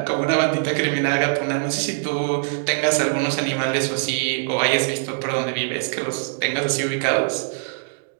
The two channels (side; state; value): left; silent; digital silence